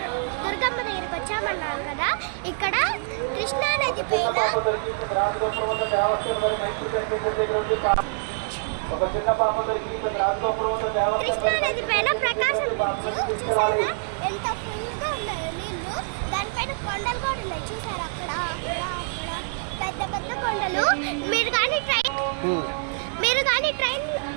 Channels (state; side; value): silent; left; digital silence